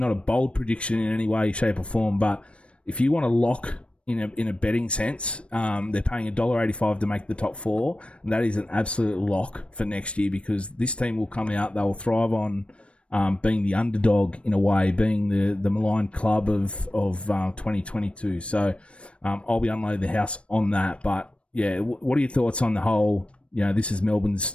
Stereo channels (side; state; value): right; late; 0.060 ms